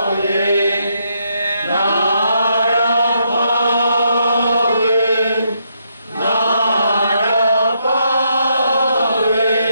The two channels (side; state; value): both; inverted; correlation -0.77